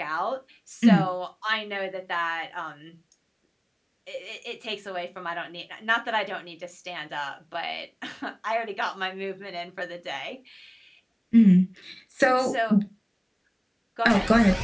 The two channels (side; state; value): both; identical; correlation 1.00